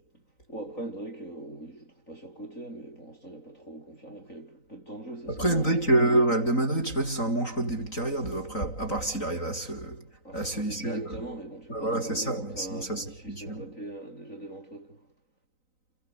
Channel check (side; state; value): right; late; 3.9 ms